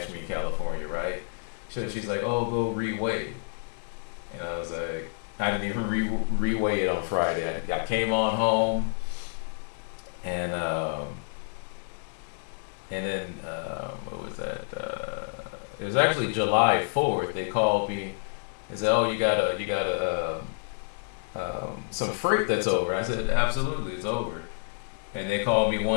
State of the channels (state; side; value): silent; right; digital silence